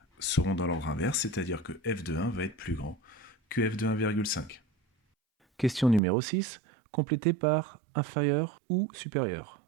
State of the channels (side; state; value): left; drops out; at 6.0 s